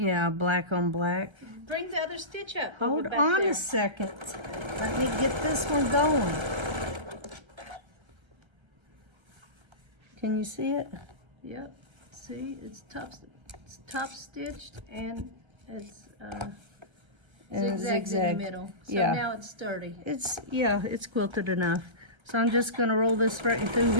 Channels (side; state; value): left; late; 1.3 ms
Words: black on black. Bring the other stitch up. Hold back on there. a second. Let me get this one going. Can you see it? Yep. See, it's top stitched, and it's zigzags in the middle. So yeah. now it's sturdy. It's quilted enough. So I'm just gonna roll this right through